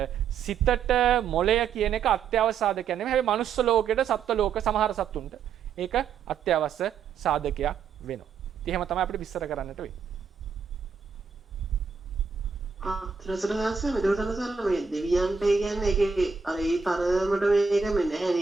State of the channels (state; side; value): quieter; left; 6.0 dB